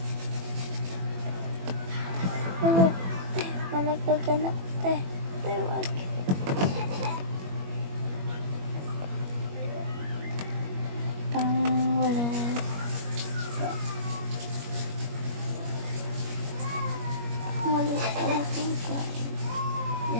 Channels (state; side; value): late; left; 21 ms